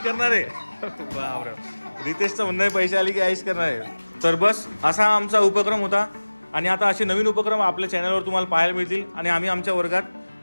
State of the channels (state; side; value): inverted; both; correlation -1.00